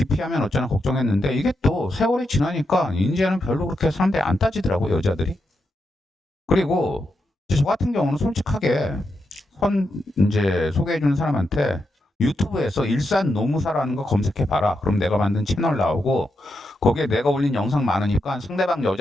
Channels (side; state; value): both; normal; correlation 0.85